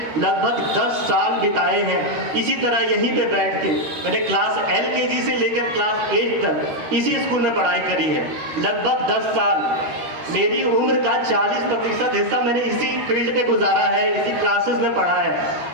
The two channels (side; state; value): left; late; 13 ms